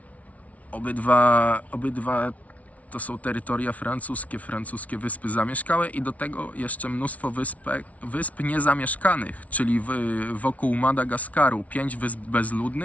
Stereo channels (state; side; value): late; right; 0.068 ms